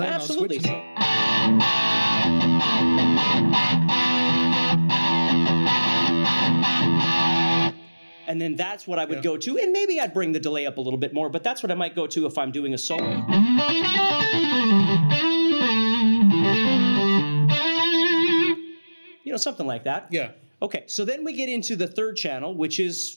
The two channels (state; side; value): inverted; both; correlation -1.00